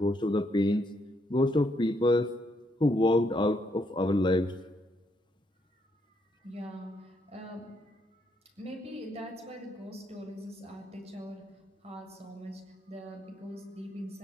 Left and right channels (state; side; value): normal; both; correlation 0.75